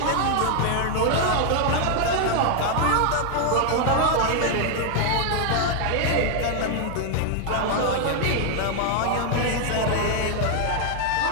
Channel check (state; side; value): different; both; correlation 0.00